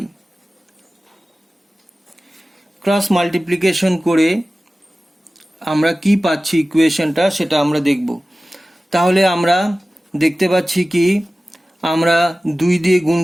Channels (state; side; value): normal; both; correlation 0.96